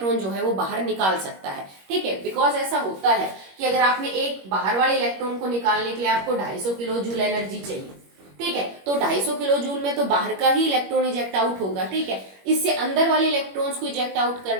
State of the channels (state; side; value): late; left; 21 ms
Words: जो है वो बाहर निकाल सकता है, ठीक है। बिकॉज ऐसा होता है कि अगर आपने एक बाहर वाले इलेक्ट्रॉन को निकालने के लिए आपको 250 किलो जूल एनर्जी चाहिए, ठीक है, तो 250 किलो जूल में तो बाहर का ही इलेक्ट्रॉन इजेक्ट आउट होगा, ठीक है। इससे अंदर वाले इलेक्ट्रॉन्स को इजेक्ट आउट